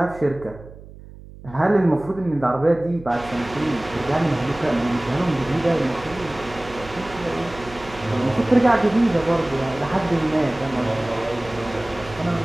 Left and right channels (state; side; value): noise; right; hum, 18 dB below the sound